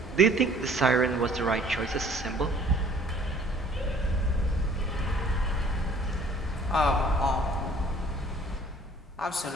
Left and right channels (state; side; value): normal; both; correlation 0.54